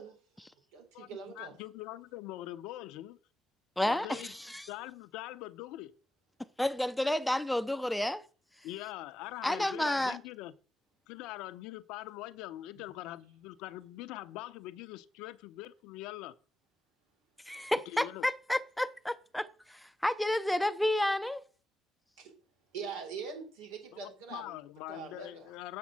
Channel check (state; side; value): normal; both; correlation 0.89